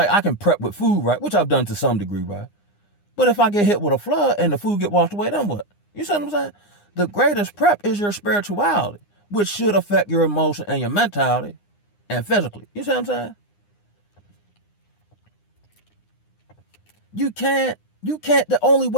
I can prep with food, right? Which I've done to some degree, right? But if I get hit with a flood and the food get washed away, then what? You see what I'm saying? The greatest prep is your spirituality, which should affect your emotion and your mentality and physically. You see what I'm saying? You can't, the only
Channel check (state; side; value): late; right; 9.8 ms